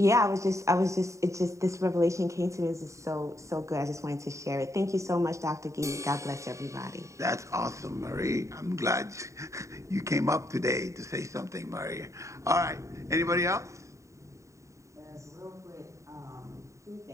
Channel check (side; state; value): left; late; 0.15 ms